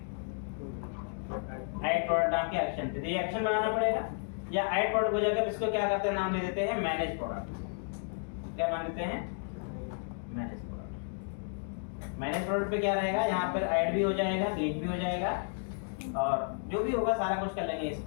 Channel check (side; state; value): right; silent; 56 dB below the other